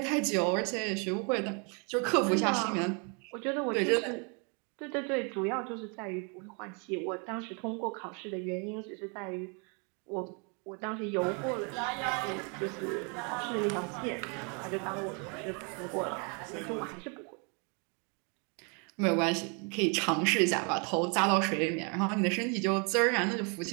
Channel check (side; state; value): left; quieter; 35.3 dB